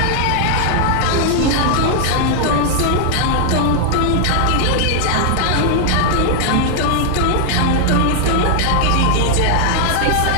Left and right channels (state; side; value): different; both; correlation 0.00